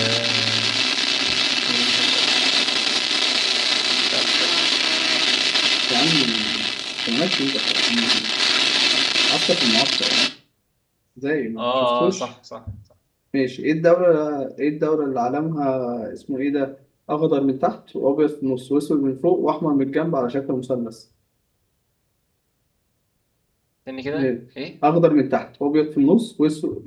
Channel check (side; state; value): both; identical; correlation 1.00